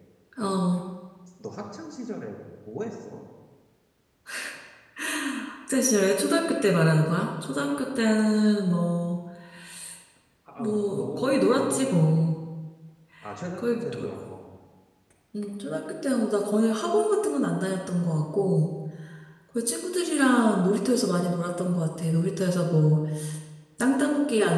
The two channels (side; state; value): both; identical; correlation 1.00